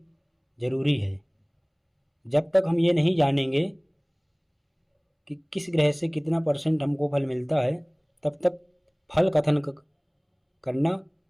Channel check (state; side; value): identical; both; correlation 1.00